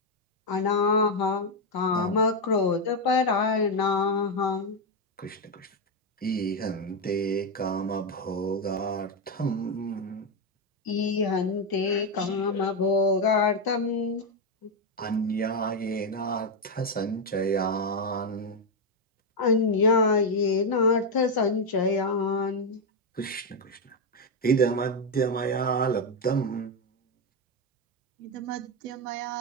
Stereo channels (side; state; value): both; normal; correlation 0.04